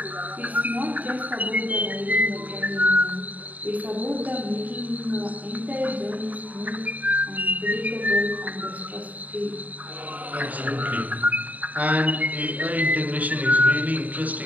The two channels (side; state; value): left; late; 0.075 ms